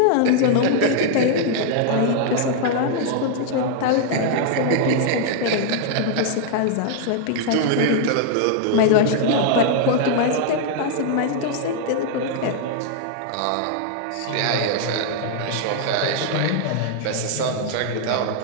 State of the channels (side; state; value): both; different; correlation -0.01